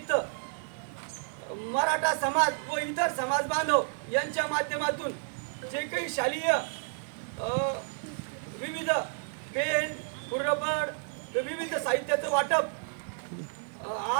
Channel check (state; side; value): silent; left; digital silence